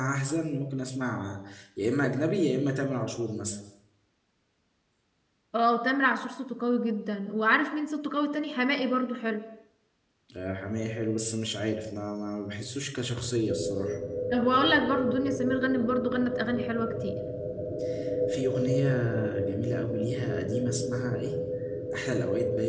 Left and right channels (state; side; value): identical; both; correlation 1.00